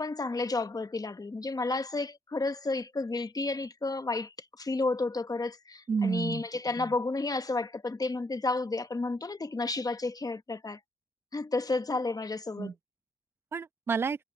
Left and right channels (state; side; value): normal; both; correlation 0.72